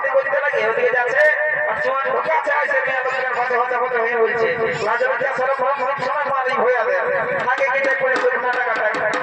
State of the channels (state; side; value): identical; both; correlation 1.00